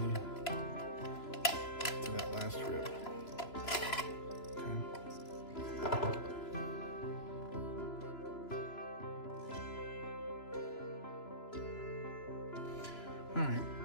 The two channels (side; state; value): right; late; 3.0 ms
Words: to that last rib. Okay. Alright,